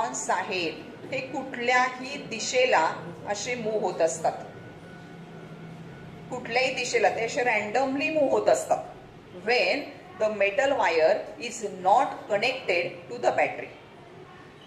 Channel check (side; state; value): both; identical; correlation 1.00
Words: आहेत हे कुठल्याही दिशेला असे मूव्ह होत असतात. कुठल्याही दिशेला ते असे रॅन्डमली मूव्ह होत असतात. When the metal wire is not connected to the battery.